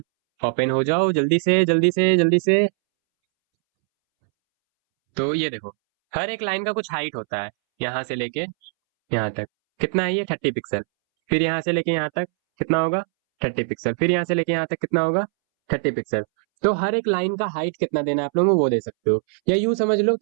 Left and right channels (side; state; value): left; silent; 64 dB below the other